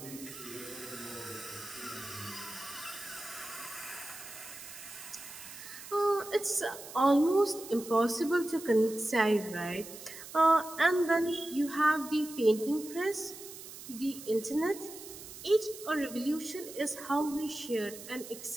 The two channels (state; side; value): noise; right; hiss, 13 dB below the sound